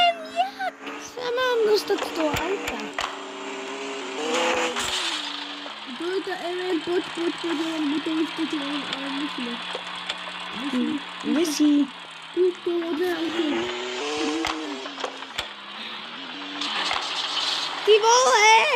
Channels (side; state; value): both; identical; correlation 1.00